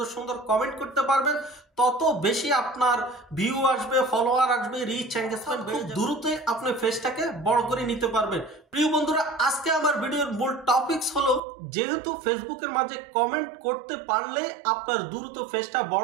সুন্দর কমেন্ট করতে পারবেন, তত বেশি আপনার ভিউ আসবে, ফলোয়ার আসবে, রিচ এঙ্গেজমেন্ট খুব দ্রুতই আপনি ফেসটাকে বড় করে নিতে পারবেন। প্রিয় বন্ধুরা, আজকে আমার ভিডিওর মূল টপিকস হলো, যেহেতু ফেসবুকের মাঝে কমেন্ট করতে পারলে আপনার দ্রুত ফেসটা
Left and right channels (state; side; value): drops out; left; at 11.4 s